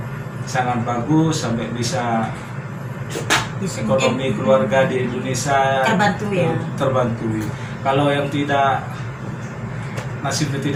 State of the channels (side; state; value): both; identical; correlation 1.00